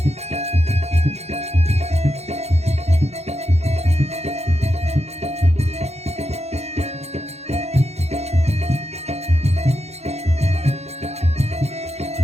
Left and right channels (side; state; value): left; late; 0.31 ms